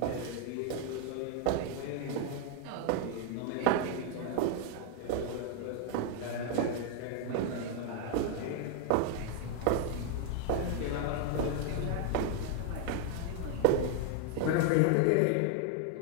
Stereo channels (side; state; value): both; different; correlation 0.01